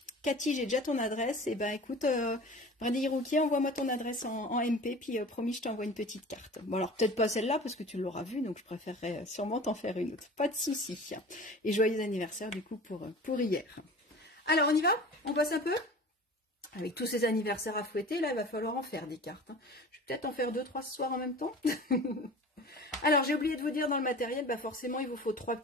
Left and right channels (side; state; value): both; normal; correlation 0.40